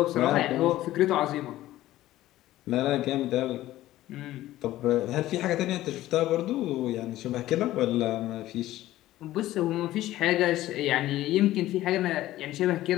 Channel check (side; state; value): right; quieter; 15.1 dB